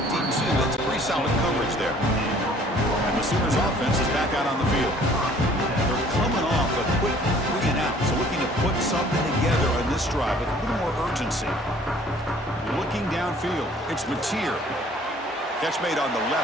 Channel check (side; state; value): both; normal; correlation 0.55